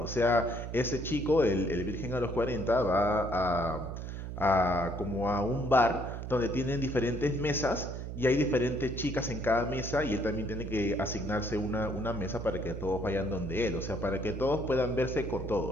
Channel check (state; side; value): noise; right; hum, 7 dB below the sound